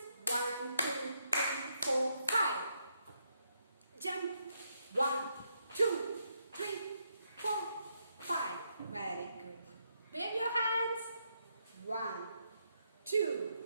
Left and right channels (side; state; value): both; inverted; correlation -0.78